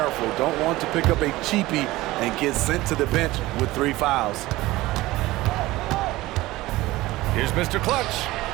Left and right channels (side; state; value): left; quieter; 18.4 dB